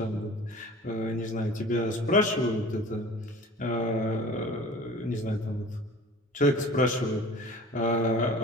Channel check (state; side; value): normal; both; correlation 0.42